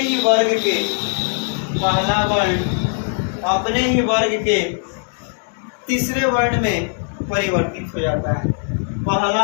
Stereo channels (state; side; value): silent; right; 58 dB below the other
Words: ही वर्ग के तीसरे वर्ण में परिवर्तित हो जाता है।